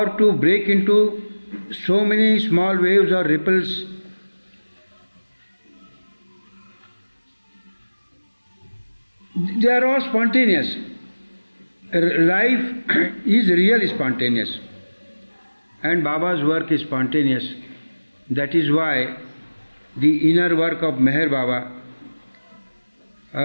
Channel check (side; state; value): both; inverted; correlation -1.00